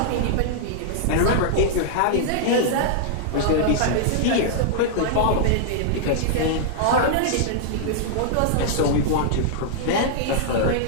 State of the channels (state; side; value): different; both; correlation -0.01